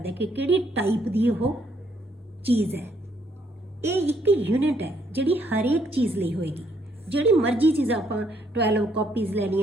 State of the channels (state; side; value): normal; both; correlation 0.70